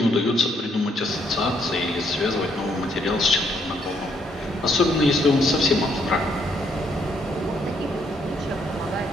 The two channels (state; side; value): normal; both; correlation 0.71